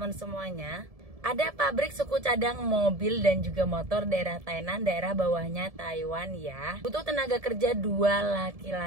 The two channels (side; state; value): left; late; 1.7 ms